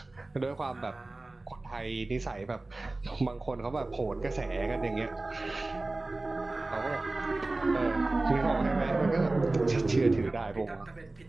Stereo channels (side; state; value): left; quieter; 3.0 dB